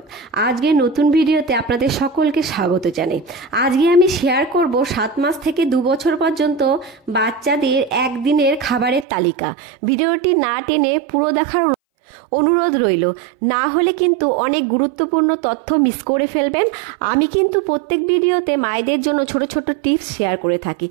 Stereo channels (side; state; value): left; drops out; at 9.1 s